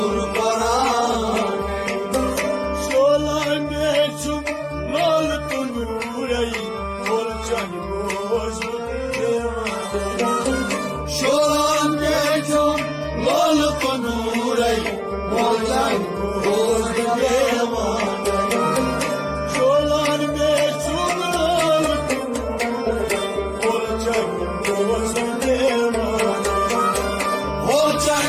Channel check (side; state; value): both; identical; correlation 1.00